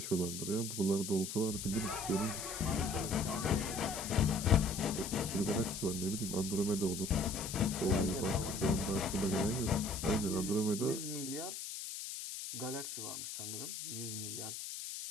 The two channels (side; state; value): left; noise; hiss, 6 dB below the sound